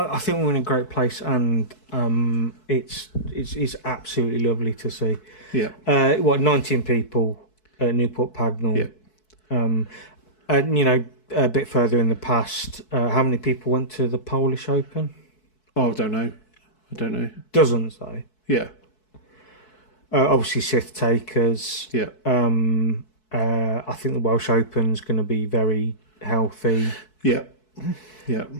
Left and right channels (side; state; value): right; late; 4.6 ms